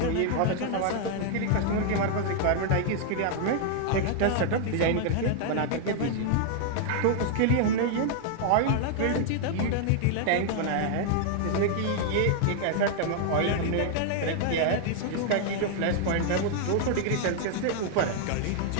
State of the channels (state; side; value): different; both; correlation 0.00